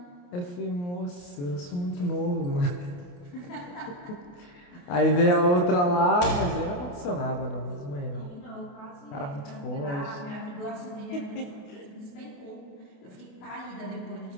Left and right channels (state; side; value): late; right; 28 ms